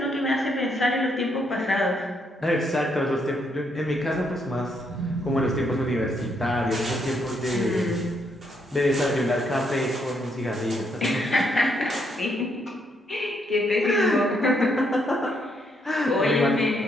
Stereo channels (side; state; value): both; normal; correlation 0.75